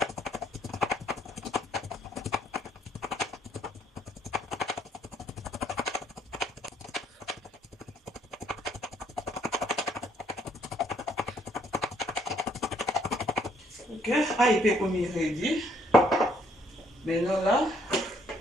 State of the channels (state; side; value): normal; both; correlation 0.67